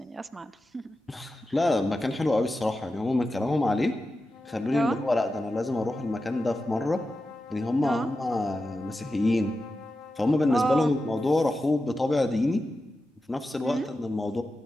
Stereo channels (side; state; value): both; normal; correlation 0.91